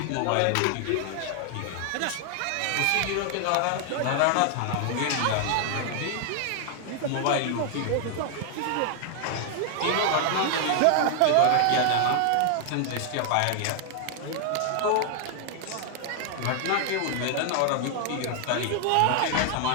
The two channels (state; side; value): different; both; correlation 0.00